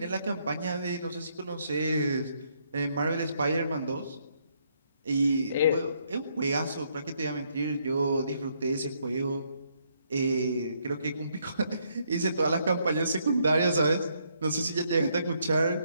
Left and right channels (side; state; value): both; inverted; correlation -0.73